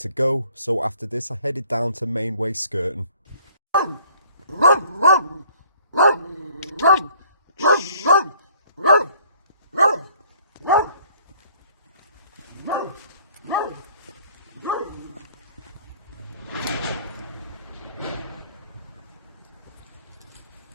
go, so after this I headed down to Mainway, Skerton.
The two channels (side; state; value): both; inverted; correlation -0.58